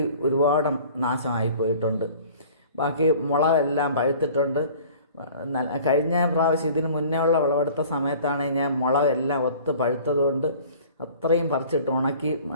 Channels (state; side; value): inverted; both; correlation -0.48